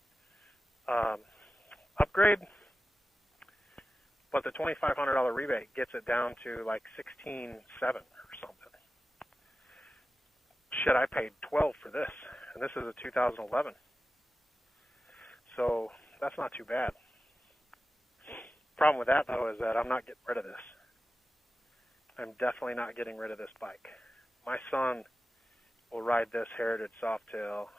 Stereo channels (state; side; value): normal; both; correlation 0.93